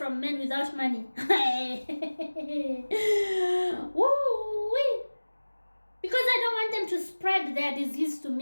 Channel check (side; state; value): both; inverted; correlation -1.00